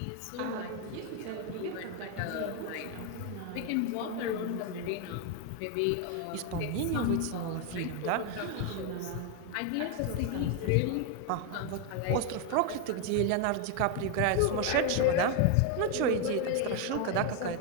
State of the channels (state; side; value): different; both; correlation 0.01